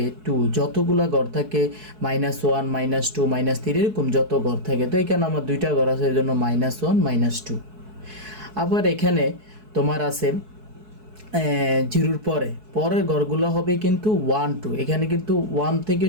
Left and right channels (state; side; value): late; left; 4.6 ms